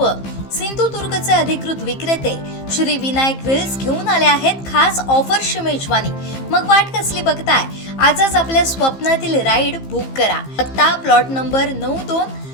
सिंधुदुर्गचे अधिकृत विक्रेते श्री विनायक व्हील्स घेऊन आले आहेत खास ऑफरची मेजवानी। मग वाट कसली बघताय, आजच आपल्या स्वप्नातील राईड बुक करा। पत्ता प्लॉट नंबर 92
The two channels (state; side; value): late; right; 15 ms